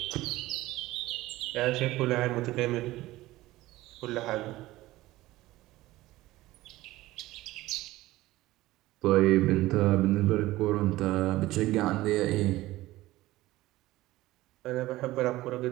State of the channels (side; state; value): left; quieter; 17.4 dB